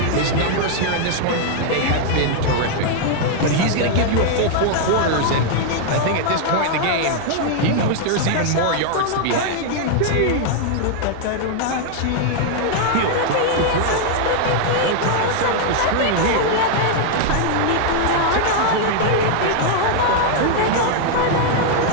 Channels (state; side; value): different; both; correlation 0.00